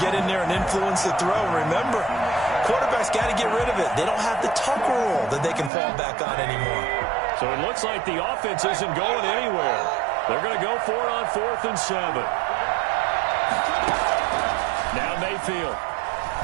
get in there and influence the throw. Remember, quarterbacks got to get rid of it. They don't have the tuck rule that they can fall back on anymore. So it looks like the offense isn't going anywhere. They're going to go for it on 4th and 7. Now Mayfield.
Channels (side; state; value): left; drops out; at 5.7 s